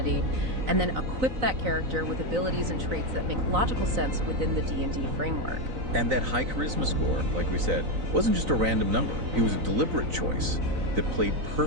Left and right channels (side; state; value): left; late; 3.9 ms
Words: and then equip that character with abilities and traits that make logical sense within the D&D framework. And that high charisma score, like we said, wasn't just a random number. It was a deliberate choice that played